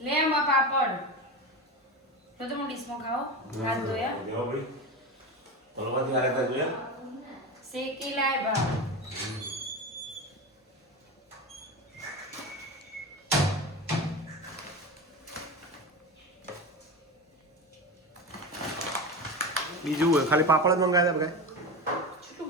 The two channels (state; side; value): normal; both; correlation 0.23